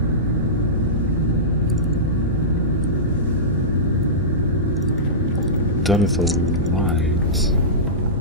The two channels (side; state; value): both; normal; correlation -0.18